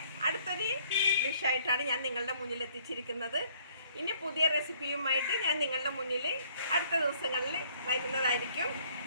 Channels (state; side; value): inverted; both; correlation -0.62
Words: അടുത്തൊരു ഡിഷായിട്ടാണ് ഞാൻ നിങ്ങളുടെ മുന്നിൽ എത്തിച്ചിരിക്കുന്നത്. ഇനി പുതിയ റെസിപ്പിയുമായിട്ട് ഞാൻ നിങ്ങളുടെ മുന്നിൽ അടുത്ത ദിവസങ്ങളിൽ വരുന്നതായിരിക്കും.